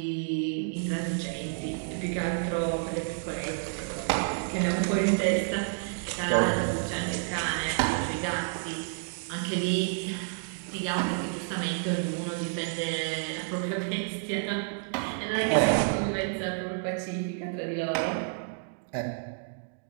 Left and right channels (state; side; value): silent; left; digital silence